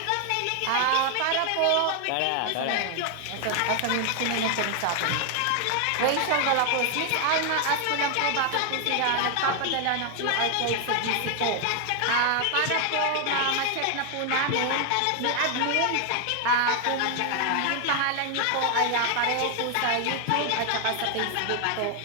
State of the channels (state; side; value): different; both; correlation 0.00